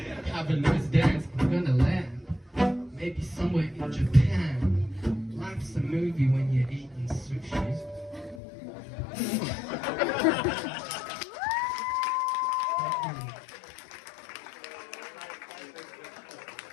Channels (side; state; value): right; drops out; at 8.4 s